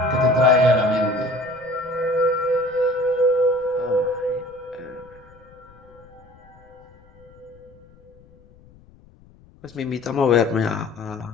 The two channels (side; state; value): left; noise; rumble, 26 dB below the sound